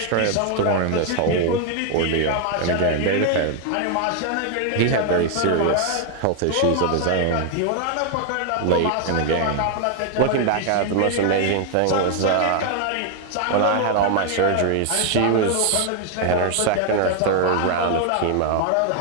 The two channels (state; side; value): different; both; correlation 0.00